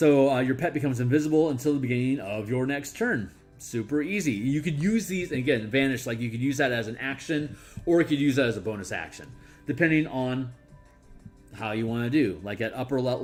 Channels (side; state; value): both; identical; correlation 1.00